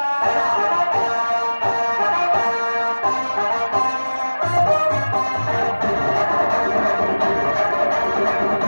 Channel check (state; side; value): inverted; both; correlation -1.00